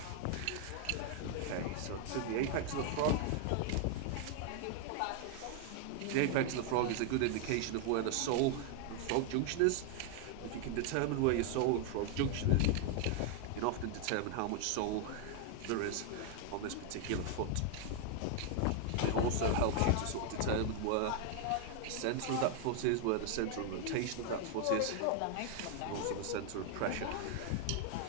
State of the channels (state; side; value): different; both; correlation 0.00